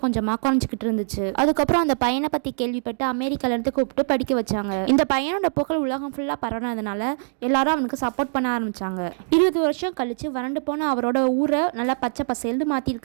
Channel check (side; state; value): left; silent; digital silence